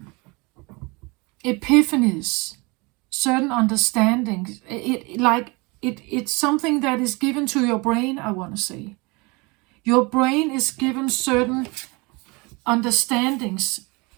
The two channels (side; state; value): left; quieter; 27.0 dB